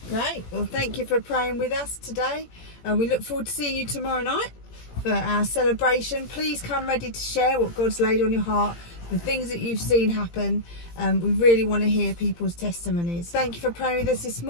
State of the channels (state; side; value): late; right; 17 ms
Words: Great. Well, thank you for praying with us today. We look forward to seeing you tomorrow night for our celebration. Please come ready to share what God's laid on your heart, the things that you've seen happen. We really want to hear people's testimonies. Thank you for praying with us this